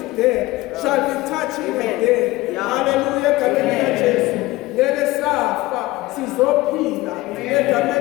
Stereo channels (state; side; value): quieter; right; 19.3 dB